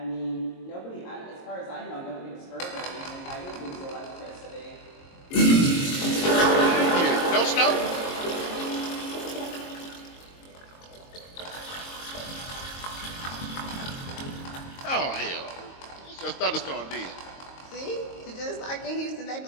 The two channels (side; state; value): right; late; 22 ms